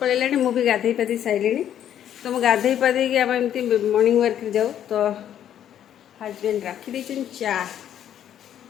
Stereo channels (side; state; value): right; quieter; 10.3 dB